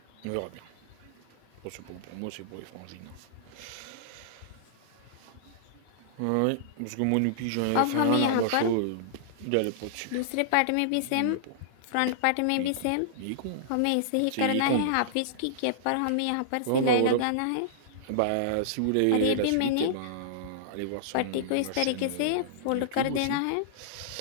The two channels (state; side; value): different; both; correlation -0.02